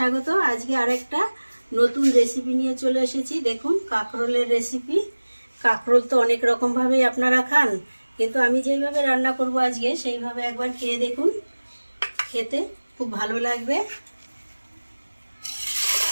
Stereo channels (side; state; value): both; inverted; correlation -1.00